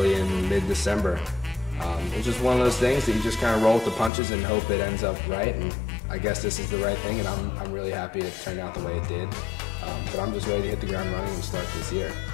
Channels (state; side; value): drops out; right; at 4.1 s